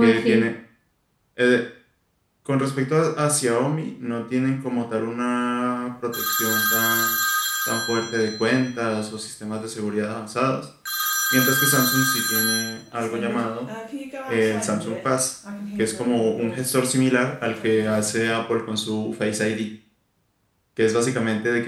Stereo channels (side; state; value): both; identical; correlation 1.00